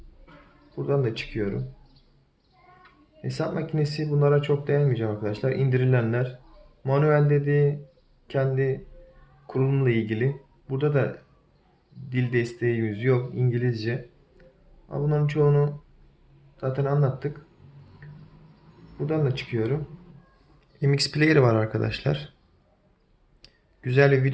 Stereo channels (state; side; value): identical; both; correlation 1.00